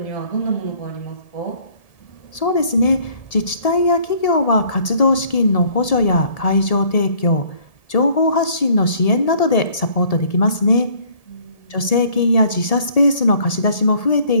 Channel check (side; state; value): right; late; 1.7 ms